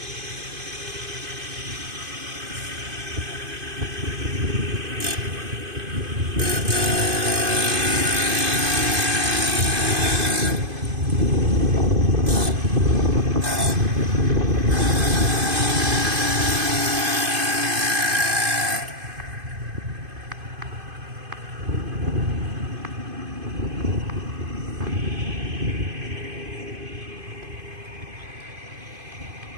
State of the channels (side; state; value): left; late; 2.5 ms